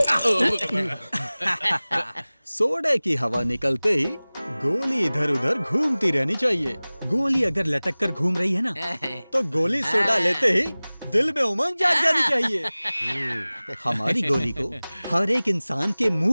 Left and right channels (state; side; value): inverted; both; correlation -0.99